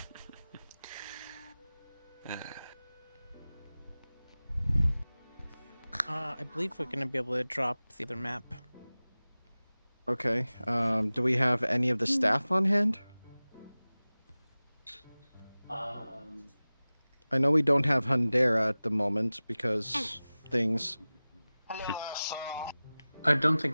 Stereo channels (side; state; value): both; inverted; correlation -0.98